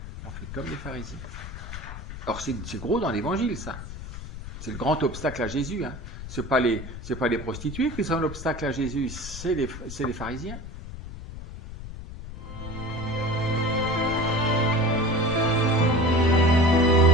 on fait comme les pharisiens. Or, c'est gros dans l'évangile, ça. C'est le grand obstacle à Jésus. Hein. Ce n'est pas les prostituées qui sont l'obstacle à Jésus, c'est les pharisiens.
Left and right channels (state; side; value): noise; left; rumble, 10 dB below the sound